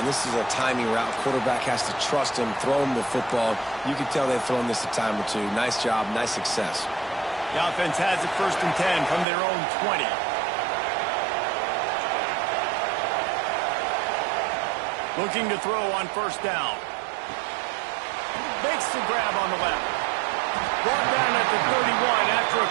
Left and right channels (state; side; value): drops out; left; at 9.2 s